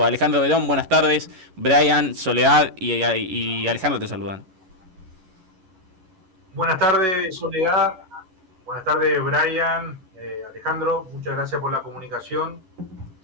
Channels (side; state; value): left; late; 11 ms